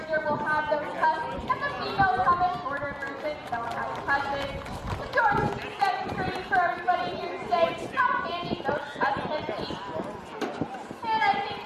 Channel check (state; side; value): identical; both; correlation 1.00